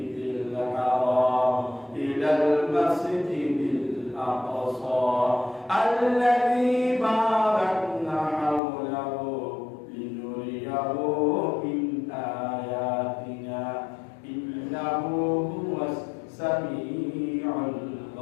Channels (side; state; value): right; drops out; at 8.6 s